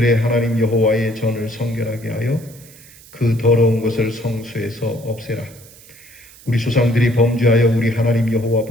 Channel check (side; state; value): right; noise; hiss, 22 dB below the sound